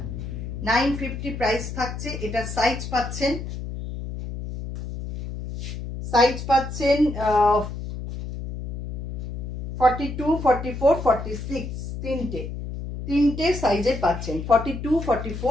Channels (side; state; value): left; noise; hum, 7 dB below the sound